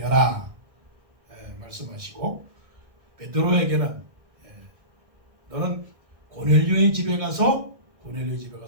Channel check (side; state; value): left; late; 1.6 ms